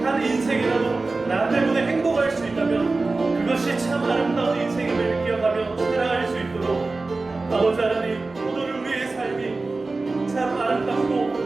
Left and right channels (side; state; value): left; quieter; 3.5 dB